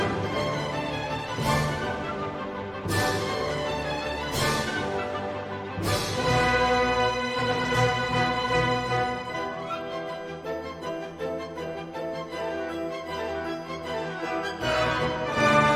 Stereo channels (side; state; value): both; identical; correlation 1.00